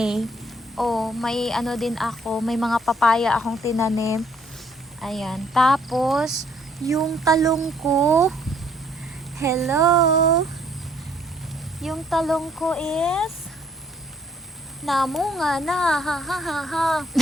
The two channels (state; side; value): normal; both; correlation 0.65